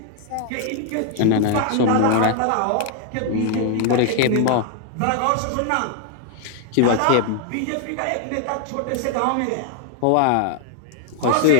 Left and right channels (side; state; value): both; different; correlation 0.00